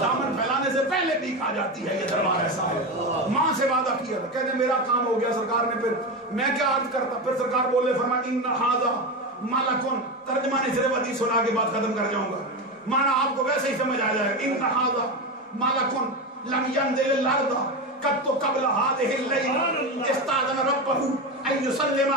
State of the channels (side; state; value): both; normal; correlation 0.18